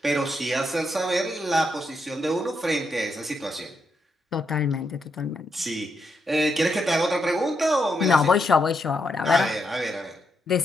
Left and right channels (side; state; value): both; normal; correlation 0.81